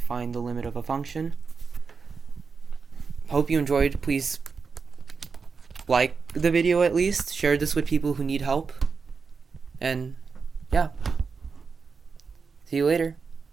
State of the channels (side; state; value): left; quieter; 5.2 dB